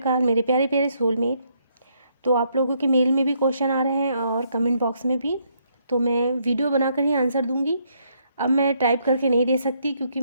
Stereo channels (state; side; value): inverted; both; correlation -0.73